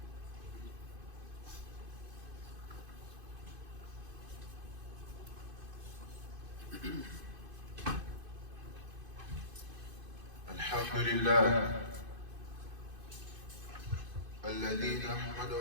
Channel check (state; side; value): late; left; 2.5 ms